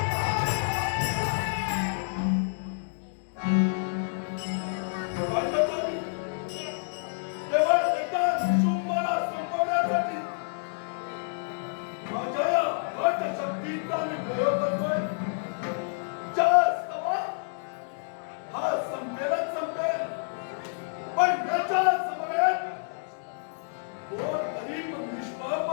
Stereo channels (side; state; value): right; silent; digital silence